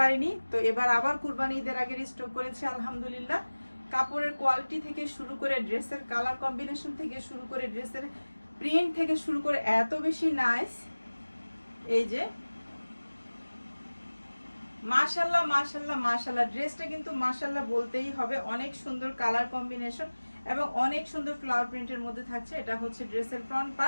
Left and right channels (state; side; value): inverted; both; correlation -1.00